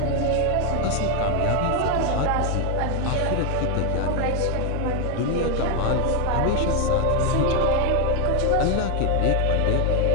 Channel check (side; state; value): both; different; correlation 0.01